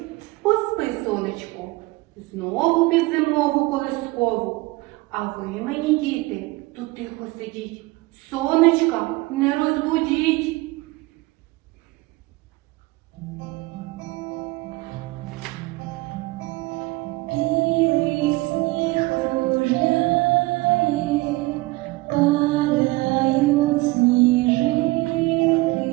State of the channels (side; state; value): left; quieter; 21.6 dB